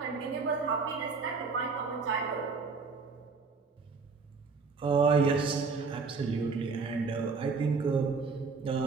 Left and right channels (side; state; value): left; quieter; 4.7 dB